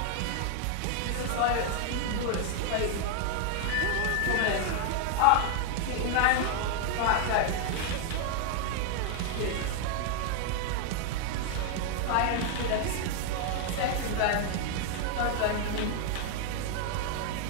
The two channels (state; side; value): different; both; correlation 0.00